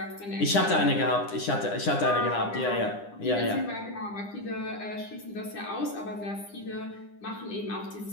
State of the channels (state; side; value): late; right; 9.9 ms